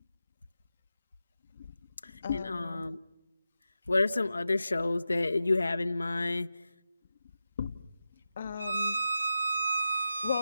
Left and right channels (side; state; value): both; inverted; correlation -0.92